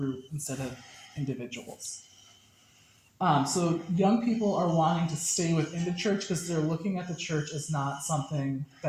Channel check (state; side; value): identical; both; correlation 1.00